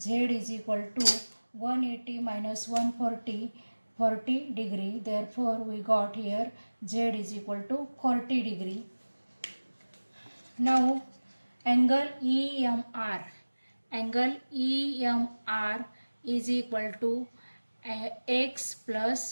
is equal to 180 minus 140, 40 degree. Therefore, we got here Z is equal to 40 degree. Now, angle EMR. Angle EMR is equal to X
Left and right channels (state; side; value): inverted; both; correlation -1.00